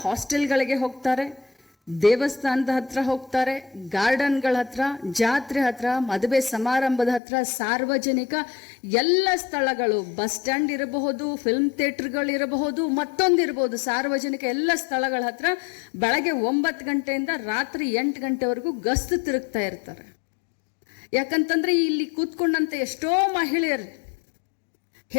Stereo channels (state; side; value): drops out; right; at 7.2 s